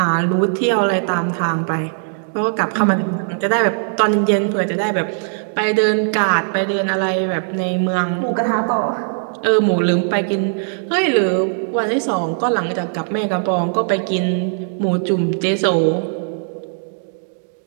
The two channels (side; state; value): left; silent; digital silence